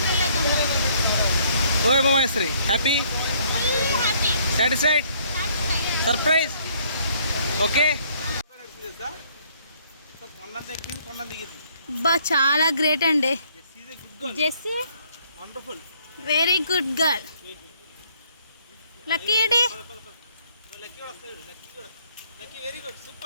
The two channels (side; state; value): both; inverted; correlation -0.64